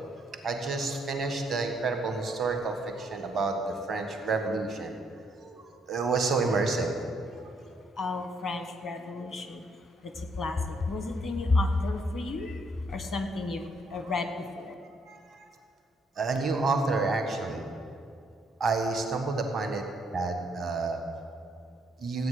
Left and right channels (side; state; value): both; normal; correlation 0.71